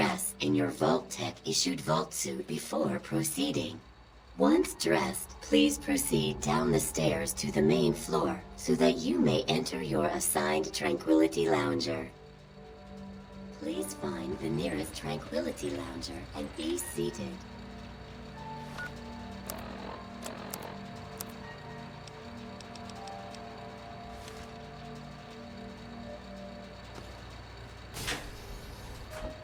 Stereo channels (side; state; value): both; identical; correlation 1.00